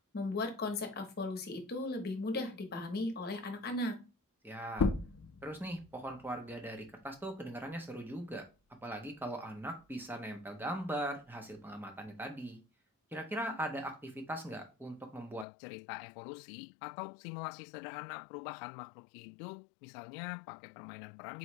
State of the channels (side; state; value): right; drops out; at 15.5 s